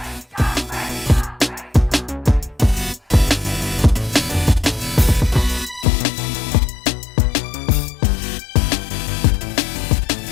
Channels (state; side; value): drops out; right; at 5.9 s